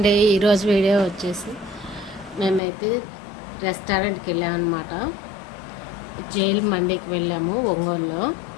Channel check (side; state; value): right; drops out; at 2.6 s